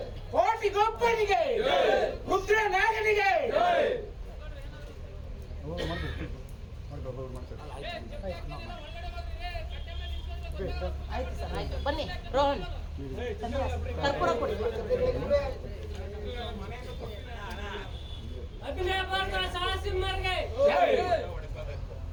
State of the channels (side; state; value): both; identical; correlation 1.00